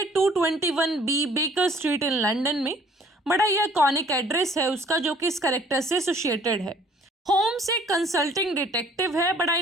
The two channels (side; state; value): both; normal; correlation 0.57